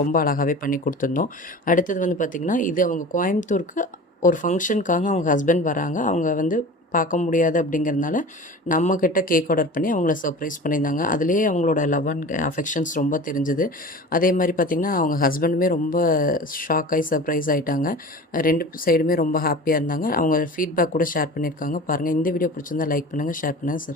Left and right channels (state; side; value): normal; both; correlation 0.36